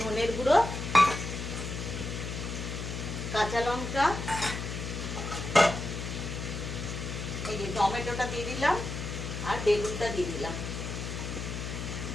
ধনের গুঁড়ো, কাঁচা লঙ্কা, এই যে টমেটোটা দিয়ে দিলাম, আর বেগুনটা দিয়ে দিলাম।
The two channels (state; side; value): noise; left; hum, 5 dB below the sound